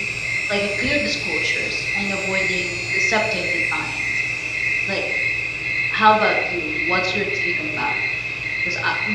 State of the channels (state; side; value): identical; both; correlation 1.00